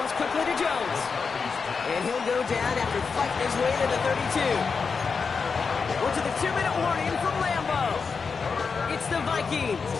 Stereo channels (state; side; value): quieter; right; 5.2 dB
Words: quickly to Jones. And he'll go down after fighting his way to the 32. We're to the 2-minute warning from Lambeau. It's the Vikings.